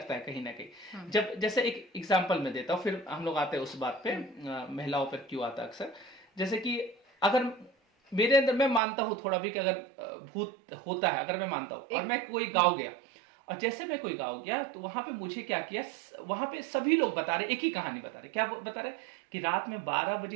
है कहीं ना कहीं। जब जैसे एक एग्जांपल मैं देता हूँ, फिर हम लोग आते हैं उस बात पे महिलाओं पर क्यों आता है अक्सर। जैसे कि अगर मेरे अंदर, मैं मानता हूँ थोड़ा भी कि अगर भूत होता है, अगर मैं मानता हूँ, और मैं कोई गाँव गया, और जैसे मैं कोई गाँव गया तो वहां पे मुझे क्या किया, वहां पे सभी लोग बता रहे, एक ही कहानी बता रहे, क्या बता रहे कि रात में 12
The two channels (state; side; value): drops out; left; at 8.8 s